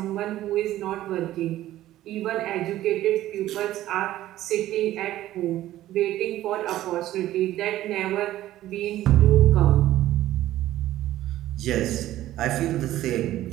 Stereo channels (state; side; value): quieter; left; 14.2 dB